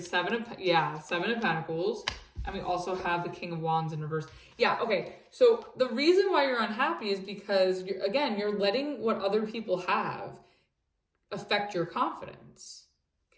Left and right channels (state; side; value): identical; both; correlation 1.00